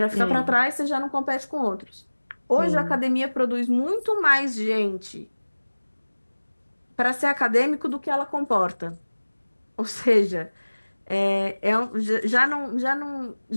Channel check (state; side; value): inverted; both; correlation -1.00